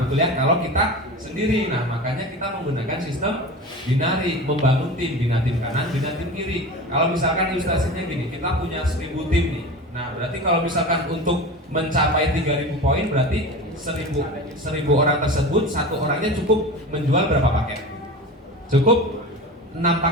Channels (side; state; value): both; normal; correlation 0.31